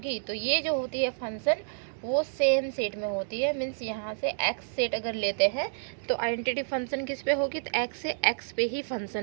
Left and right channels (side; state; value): left; silent; digital silence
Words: तो ये जो होती है फंक्शन वो सेम सेट में होती है। मीन्स यहाँ से एक्स सेट अगर लेते हैं तो आइडेंटिटी फंक्शन किस पे होगी, तो एक्स से एक्स पे ही